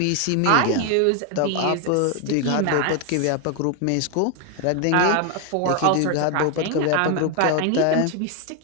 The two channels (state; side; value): different; both; correlation 0.01